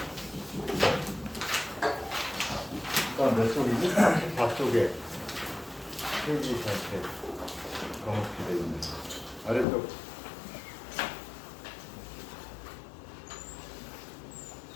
몇 쪽이지? 34쪽에 페이지 전체 검게 되어 있는 아래쪽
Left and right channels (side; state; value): right; drops out; at 9.7 s